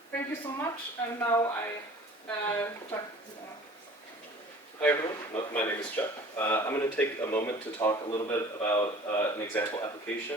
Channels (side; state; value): both; normal; correlation 0.46